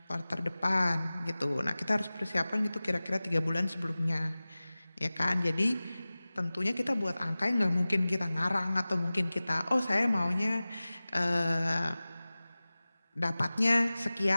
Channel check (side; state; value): both; inverted; correlation -0.98